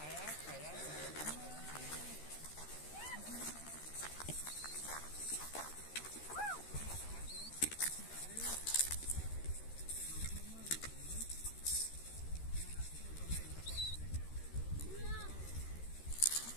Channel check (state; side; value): late; right; 13 ms